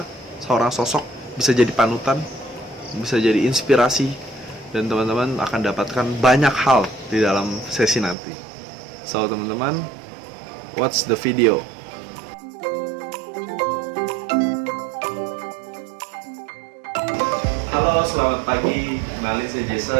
Seorang sosok bisa jadi panutan, bisa jadi inspirasi, dan teman-teman akan dapatkan banyak hal di dalam sesi nanti. So teman-teman, watch the video. Halo, selamat pagi. Kenalin, saya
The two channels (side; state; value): left; drops out; at 8.2 s